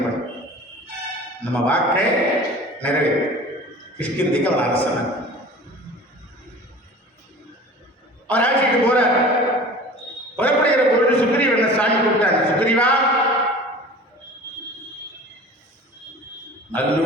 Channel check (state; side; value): normal; both; correlation 0.41